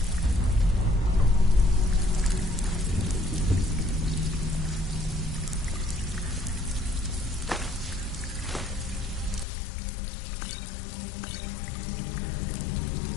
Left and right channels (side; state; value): right; drops out; at 9.5 s